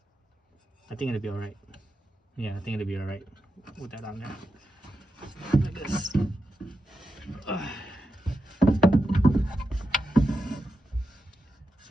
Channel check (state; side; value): normal; both; correlation 0.88